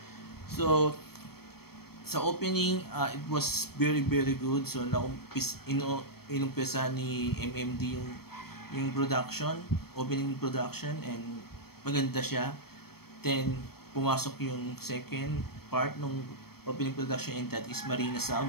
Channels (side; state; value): right; late; 0.96 ms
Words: So sa opening, it was very good. So inumpisa ni MMD yung production, opening production, and maganda siya. Then pumasok yung second part ng opening production, and that is Marina